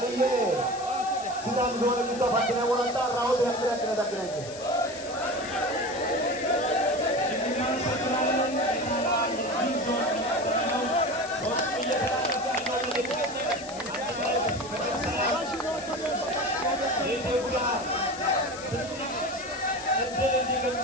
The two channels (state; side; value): noise; left; hiss, 14 dB below the sound